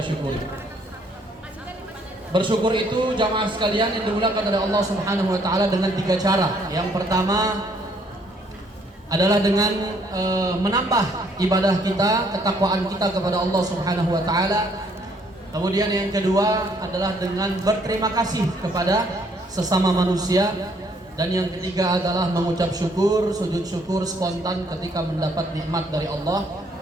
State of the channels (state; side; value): normal; both; correlation 0.66